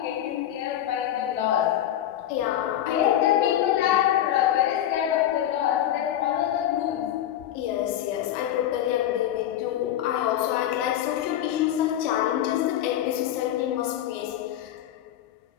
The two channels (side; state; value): right; quieter; 11.7 dB